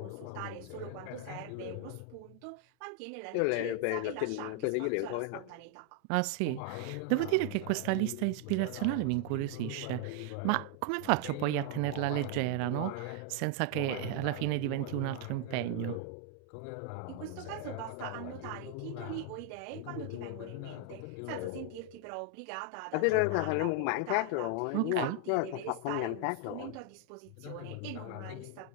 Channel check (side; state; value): both; different; correlation 0.00